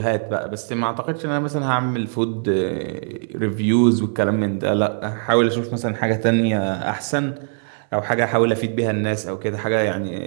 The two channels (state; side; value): silent; left; 65 dB below the other